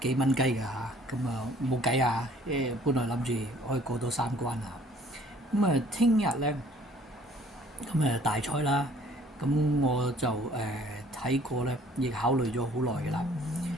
蚊雞㗎嚇。咁冇計啊，本來諗住可以過到3關啊。咁聽日咧，咁大賽啦，咁我就睇過咧，亦考慮咗好耐嘅啦。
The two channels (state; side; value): normal; both; correlation 0.57